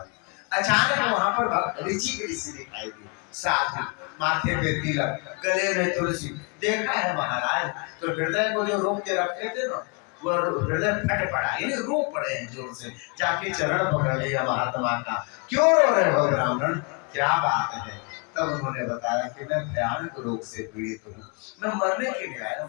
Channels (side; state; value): right; quieter; 34.5 dB